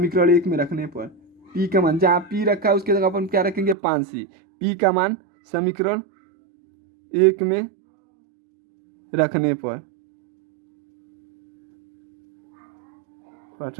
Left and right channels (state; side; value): drops out; left; at 3.8 s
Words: 1 में रखने पर P का मान जहाँ P रखा है उसके जगह अपन क्या रखेंगे 5C। P का मान समीकरण 1 में रखने पर